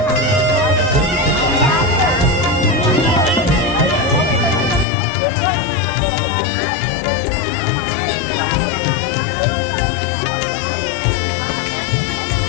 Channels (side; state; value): right; drops out; at 4.9 s